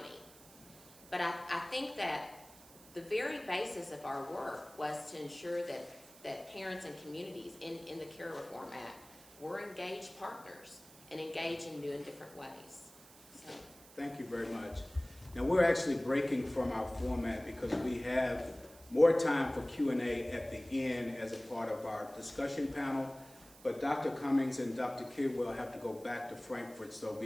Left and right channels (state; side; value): noise; right; hiss, 21 dB below the sound